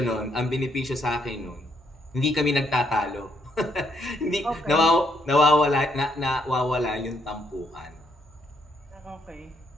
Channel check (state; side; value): normal; both; correlation 0.73